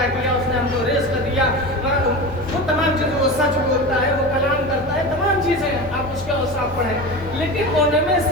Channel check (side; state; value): both; normal; correlation 0.28